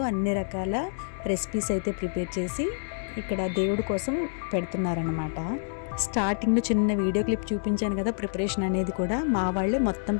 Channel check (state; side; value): silent; right; digital silence